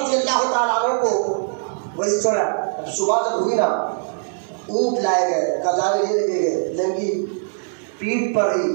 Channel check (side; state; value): left; silent; 65 dB below the other